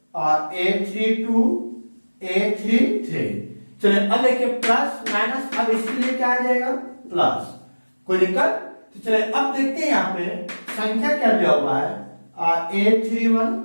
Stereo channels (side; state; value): both; inverted; correlation -1.00